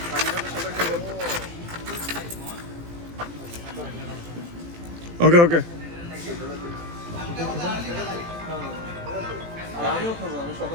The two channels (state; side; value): late; left; 18 ms